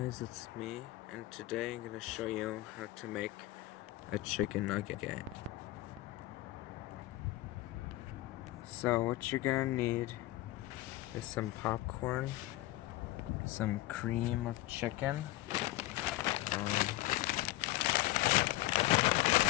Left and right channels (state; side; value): quieter; right; 17.1 dB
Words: it's me, and today I'm going to show you how to make a chicken nugget. So what you're going to need is some popcorn, some cream of chicken,